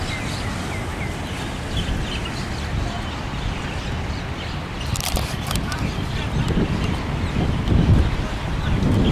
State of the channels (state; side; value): identical; both; correlation 1.00